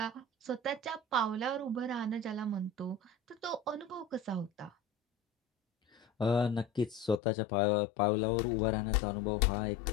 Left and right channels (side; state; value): right; drops out; at 7.2 s